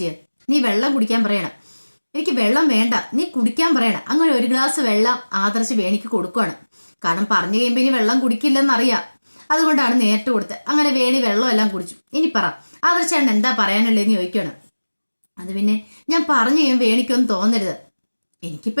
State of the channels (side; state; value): both; inverted; correlation -1.00